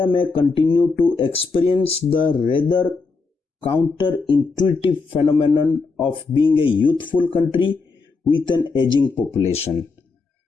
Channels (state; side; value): quieter; right; 4.3 dB